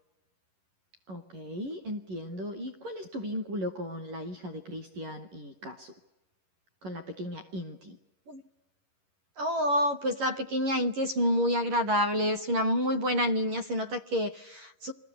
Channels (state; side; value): late; left; 11 ms